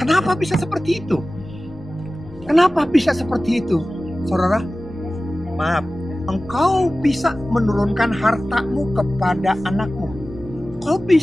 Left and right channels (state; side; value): normal; both; correlation 0.96